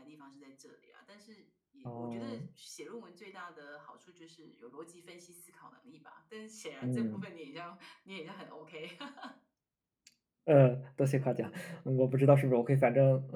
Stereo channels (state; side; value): identical; both; correlation 1.00